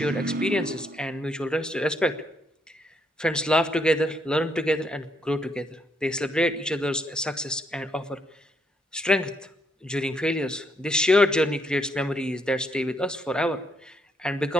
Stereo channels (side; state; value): both; normal; correlation 0.74